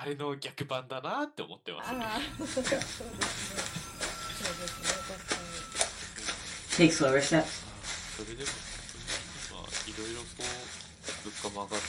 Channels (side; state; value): both; identical; correlation 1.00